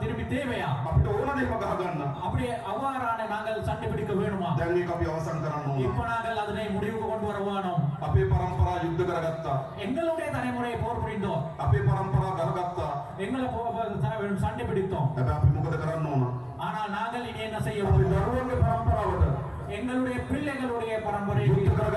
தேவையா? අපිට ඕන දෙයක් ගහ ගන්න. அப்படி அவ்வாறான நாங்கள் சண்டை பிடிக்க வேணுமா? දැන් මේක අපි අවසන් කරන්න ඕන. இப்ப நாங்கள் அதனை முடிவுக்கு கொண்டு வர வேணும். අපේ පරම්පරා යුද්ධ කරගත්තා. எங்களுடைய தலைமுறையை போர் புரிந்தோம், අපේ පරම්පරා ගහගත්තා. எங்களை சண்டை பிடித்தோம். හැබැයි අපි මොකද කරන්න ඕන? ஆனால் நாங்கள் இனி என்ன செய்ய අපි வேண்டும்? දරුවන්ගේ පරම්පරාවට எங்களுடைய பிள்ளைகளுடைய பரம்பரைக்கு යුද්ධ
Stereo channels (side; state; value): both; identical; correlation 1.00